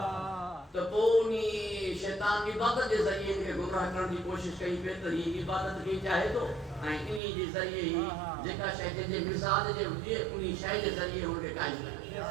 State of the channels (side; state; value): left; drops out; at 7.2 s